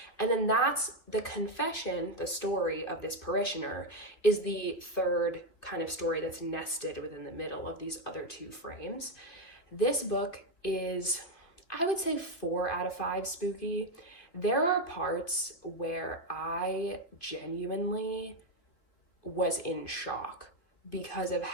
And then that's the confession, the story of this parishioner, is the third kind of story that's nested within the middle of these other 2 frames. This book is, I would say, 4 out of 5 spooky. There are parts where I genuinely was in shock because of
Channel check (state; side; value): late; right; 2.8 ms